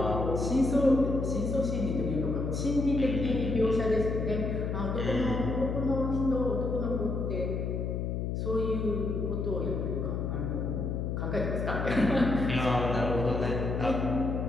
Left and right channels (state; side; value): noise; left; hum, 1 dB below the sound